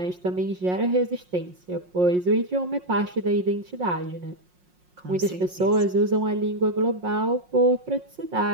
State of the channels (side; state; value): left; late; 5.6 ms